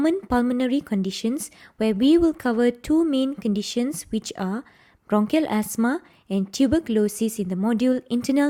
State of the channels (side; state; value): both; identical; correlation 1.00